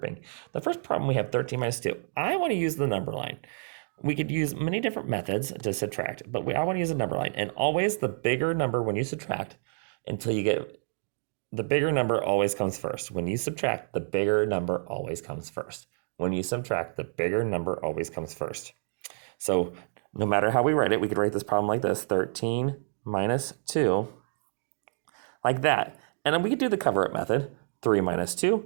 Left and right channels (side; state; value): left; silent; digital silence